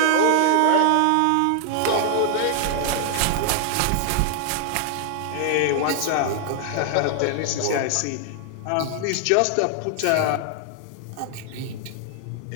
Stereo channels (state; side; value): different; both; correlation 0.00